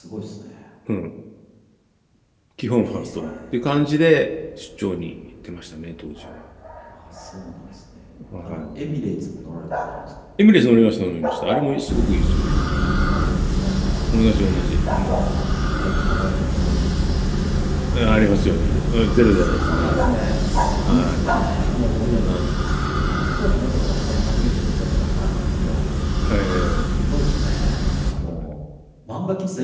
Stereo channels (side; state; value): both; identical; correlation 1.00